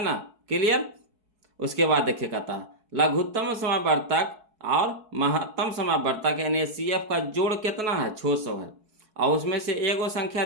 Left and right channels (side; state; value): left; late; 4.7 ms